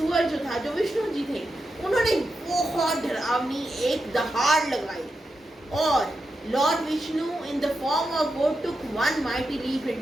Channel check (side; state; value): both; normal; correlation 0.87